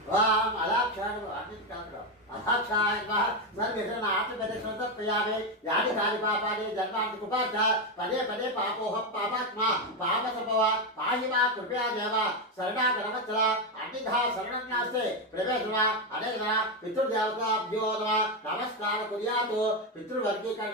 అలాక్షాడు అన్నింటి కాదు. అహాక్షాయ ఆత్మప్రదక్షిణ తర్పయామి. యాని కాని పాపాని జన్మాంతి కుపాచ పదే పదే పాపోహం పాపాత్మ పాప సంభవ పాహి మా కృపయా దేవ శరణాగరవత్సల అన్నిధా శరణం నాస్తే ప్రవేశన అనేక పితృదేవతాభ్యో నమః. నమస్కార కుర్యాతు.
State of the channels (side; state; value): both; normal; correlation 0.08